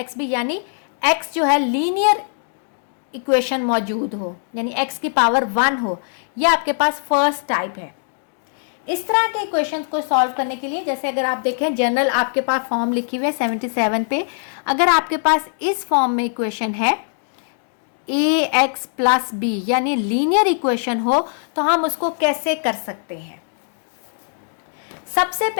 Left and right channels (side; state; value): right; silent; digital silence